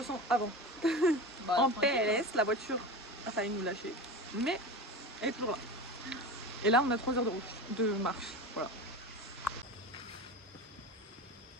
sent avant? En PLS, la voiture a failli nous lâcher, mais elle est toujours là. Et là, on a 3 heures de route, de marche, voilà.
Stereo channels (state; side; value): normal; both; correlation 0.28